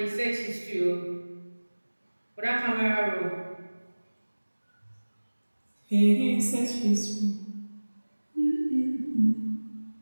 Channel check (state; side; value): inverted; both; correlation -1.00